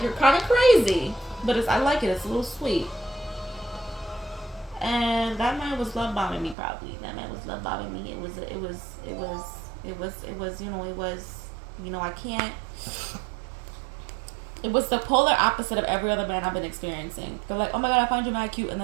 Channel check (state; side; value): drops out; left; at 6.6 s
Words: you're kind of crazy, but I like it. It's a little sweet. And that man was love bombing me, probably. That man was love bombing me. I can't. It was the polar opposite of every other man I've been experiencing. They're like, oh my God, I find you mad cute, and